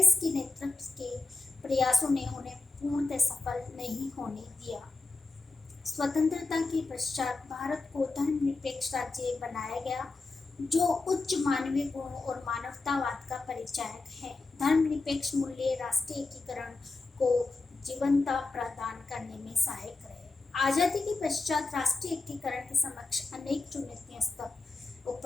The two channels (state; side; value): quieter; right; 3.6 dB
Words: के नेतृत्व के प्रयासों ने उन्हें पूर्णतः सफल नहीं होने दिया। स्वतंत्रता के पश्चात भारत को धर्मनिरपेक्ष राज्य बनाया गया, जो उच्च मानवीय गुण और मानवतावाद का परिचायक है। धर्मनिरपेक्ष मूल्य राष्ट्रीय एकीकरण को जीवंतता प्रदान करने में सहायक रहे। आजादी के पश्चात राष्ट्रीय एकीकरण के समक्ष अनेक चुनौतियां